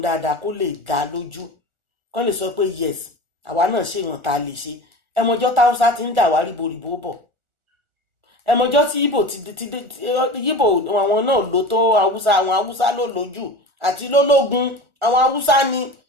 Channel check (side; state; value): left; late; 1.4 ms